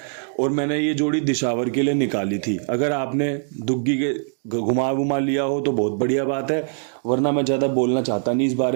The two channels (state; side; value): silent; left; digital silence